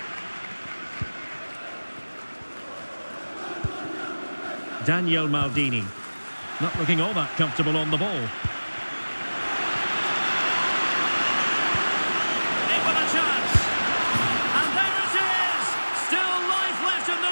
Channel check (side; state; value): both; inverted; correlation -1.00